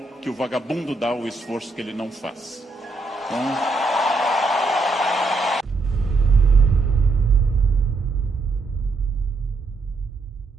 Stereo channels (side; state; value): left; quieter; 3.3 dB